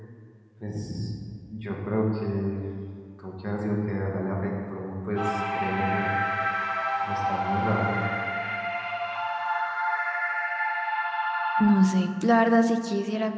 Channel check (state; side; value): identical; both; correlation 1.00